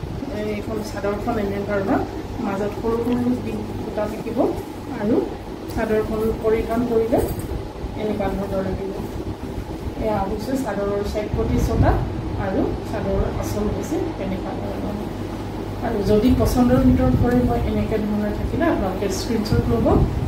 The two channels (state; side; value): identical; both; correlation 1.00